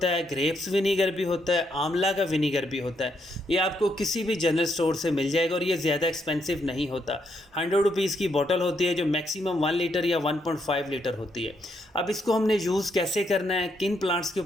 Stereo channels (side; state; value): both; normal; correlation 0.76